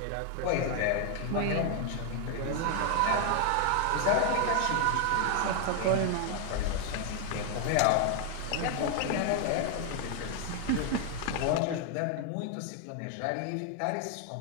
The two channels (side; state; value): both; different; correlation 0.00